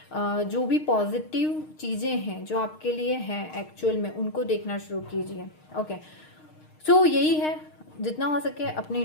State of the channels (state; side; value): late; right; 6.5 ms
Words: जो भी पॉजिटिव चीजें हैं जो आपके लिए हैं एक्चुअल में, उनको देखना शुरू कीजिए। ओके, सो यही है, जितना हो सके अपने